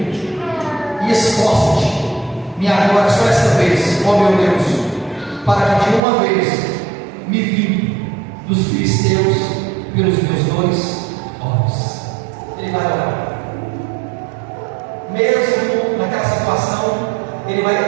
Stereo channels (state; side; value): drops out; left; at 6.0 s